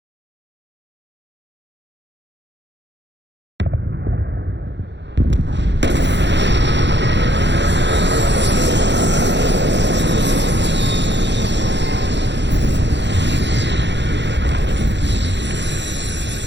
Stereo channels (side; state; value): left; late; 0.52 ms